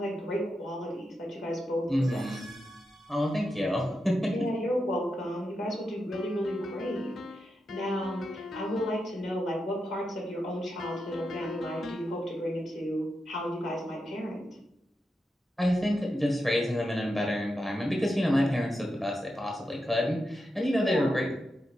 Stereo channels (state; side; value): normal; both; correlation 0.87